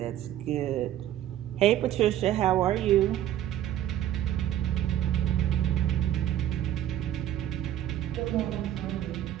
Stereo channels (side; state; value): left; quieter; 12.0 dB